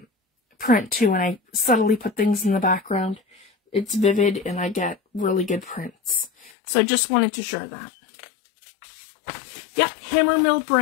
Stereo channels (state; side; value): drops out; right; at 6.5 s